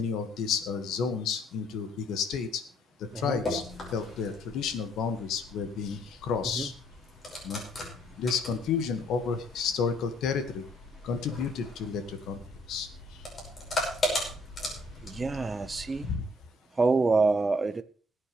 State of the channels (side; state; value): both; normal; correlation 0.65